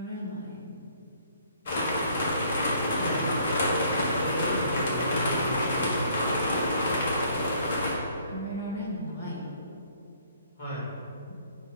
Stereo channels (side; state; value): both; inverted; correlation -0.61